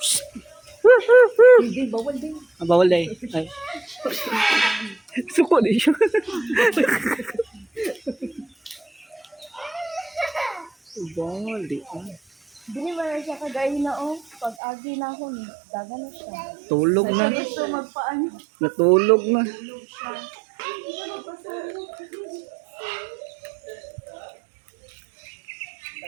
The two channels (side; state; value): left; drops out; at 14.6 s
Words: Hindi, bawal din. Bawal day. Ay. Suko din siya. Bawal di. Dili ba na siya kagaya na oh. Pag agi na ako ni, daga na siya. Tulog na. Ito magpaano. Natulog na.